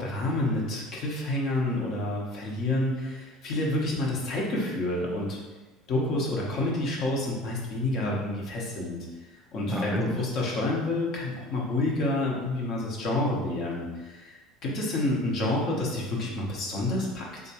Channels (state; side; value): normal; both; correlation 0.42